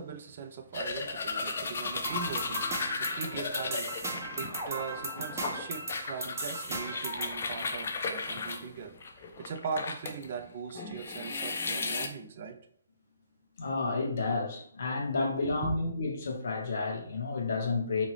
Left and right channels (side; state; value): both; inverted; correlation -0.65